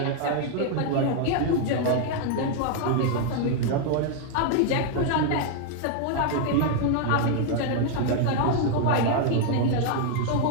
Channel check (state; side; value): different; both; correlation 0.00